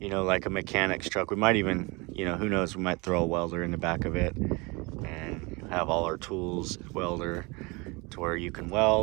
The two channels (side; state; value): left; quieter; 27.0 dB